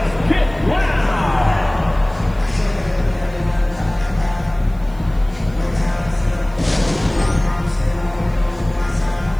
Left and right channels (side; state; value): right; noise; hiss, 28 dB below the sound